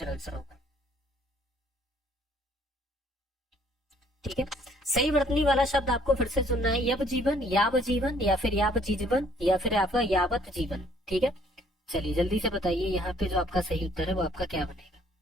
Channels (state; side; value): normal; both; correlation 0.61